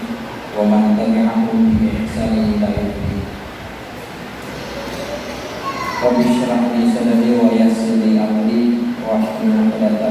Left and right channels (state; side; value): identical; both; correlation 1.00